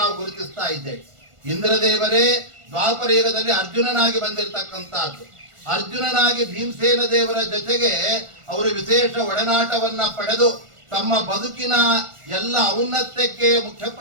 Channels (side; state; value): left; late; 1.4 ms